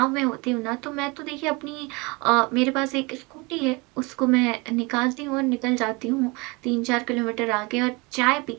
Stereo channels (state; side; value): quieter; left; 26.7 dB